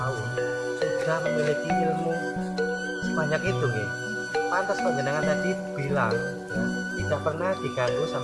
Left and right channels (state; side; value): identical; both; correlation 1.00